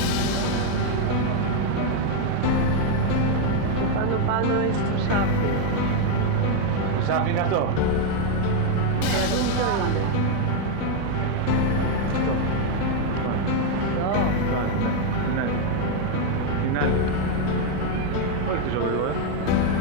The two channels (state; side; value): different; both; correlation 0.01